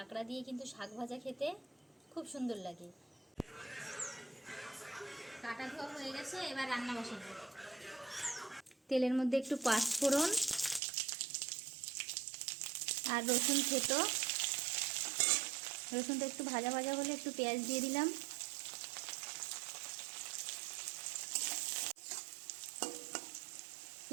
দিয়ে কিন্তু শাক ভাজা খেতে খুব সুন্দর লাগে। কাটা ধোয়া হয়ে গেছে, এবার রান্না বসাবো। তেলের মধ্যে একটু পাঁচফোড়ন আর রসুন থেতো। রসুনটা একটু ভাজা ভাজা হলে একটু পেঁয়াজ দিয়ে দিলাম।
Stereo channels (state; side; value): drops out; left; at 10.8 s